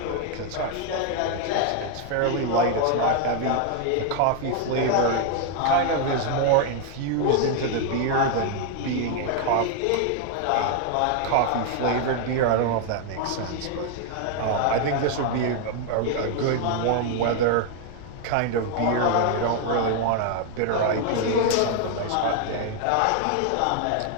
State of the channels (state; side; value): different; both; correlation 0.00